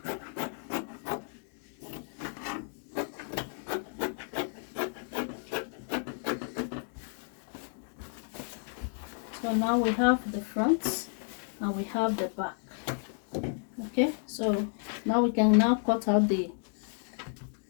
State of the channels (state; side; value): silent; right; 56 dB below the other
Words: So now we have the front and we have the back, okay. So now we can now cut out the